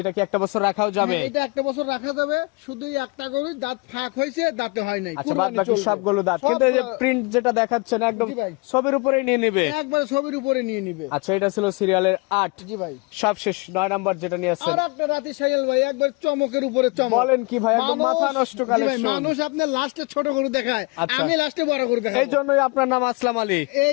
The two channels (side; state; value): right; quieter; 28.7 dB